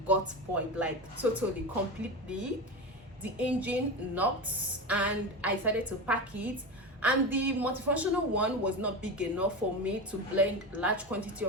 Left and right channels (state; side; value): normal; both; correlation 0.22